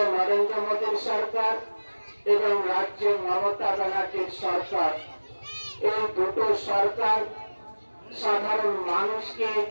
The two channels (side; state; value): both; inverted; correlation -1.00